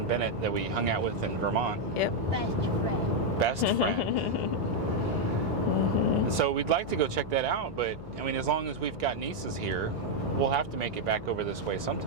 Bennett, that we hung out with in Vermont. Yep. Best friend. So we'd like to go check that out, but I mean, as long as we've got nieces here, we'll have to make it back over this way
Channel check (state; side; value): noise; left; hum, 16 dB below the sound